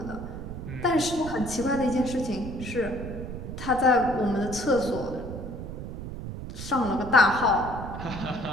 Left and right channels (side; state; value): right; noise; rumble, 8 dB below the sound